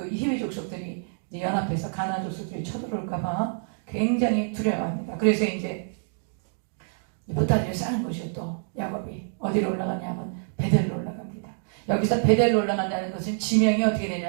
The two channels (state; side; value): silent; left; digital silence